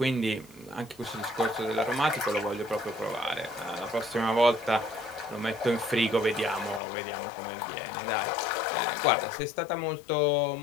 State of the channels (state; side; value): drops out; right; at 6.8 s